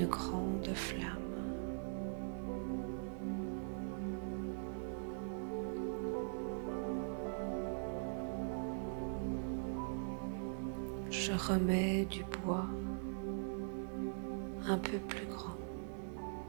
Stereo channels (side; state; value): left; silent; digital silence